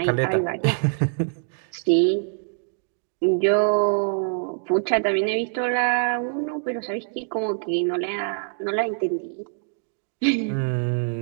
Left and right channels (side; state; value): left; silent; digital silence